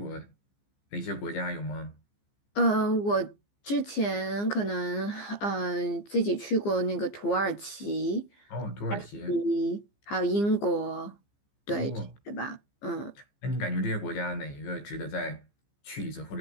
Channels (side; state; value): right; late; 15 ms